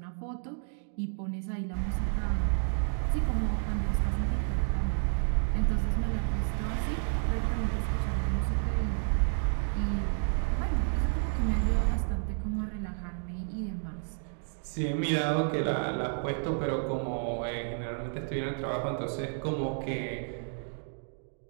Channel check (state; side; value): silent; left; 57 dB below the other